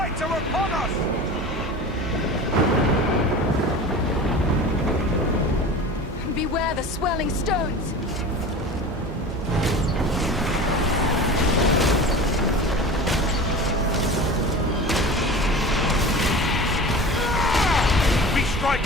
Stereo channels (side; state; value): both; normal; correlation 0.35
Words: Hobbits are upon us! Beware the swirling stones! We